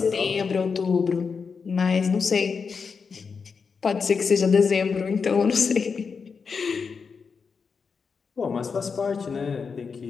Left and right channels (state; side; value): quieter; right; 5.5 dB